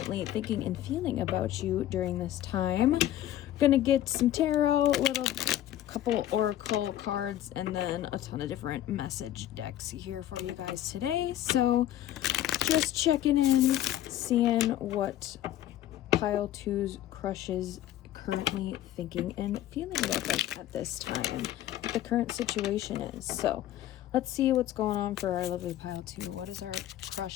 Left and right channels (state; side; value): quieter; right; 12.8 dB